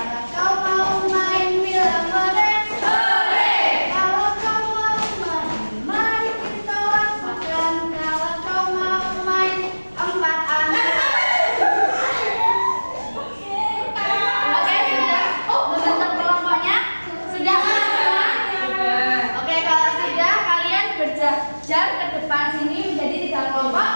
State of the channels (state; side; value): inverted; both; correlation -1.00